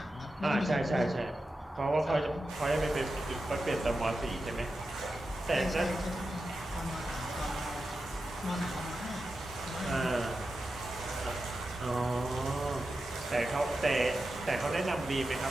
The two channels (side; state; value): both; normal; correlation 0.90